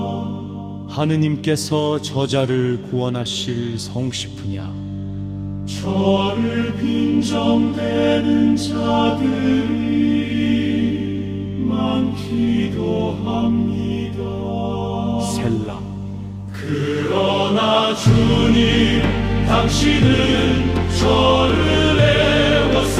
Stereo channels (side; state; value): both; identical; correlation 1.00